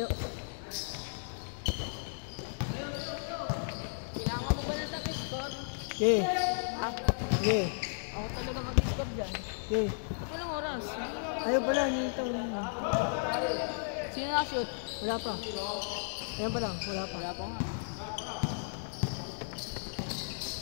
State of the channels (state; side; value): silent; right; digital silence